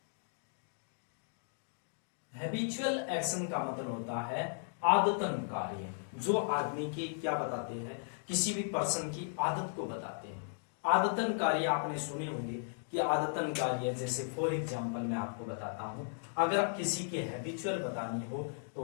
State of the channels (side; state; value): right; silent; digital silence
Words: Habitual action का मतलब होता है आदतन कार्य, जो आदमी की क्या बताते हैं, किसी भी पर्सन की आदत को बताते हैं। आदतन कार्य आपने सुने होंगे कि आदतन कार्य, जैसे फॉर एग्जांपल मैं आपको बताता हूं, अगर आप किसी की हैबिचुअल बतानी हो तो